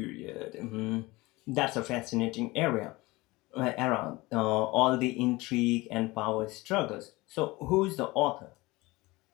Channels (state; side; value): quieter; right; 21.6 dB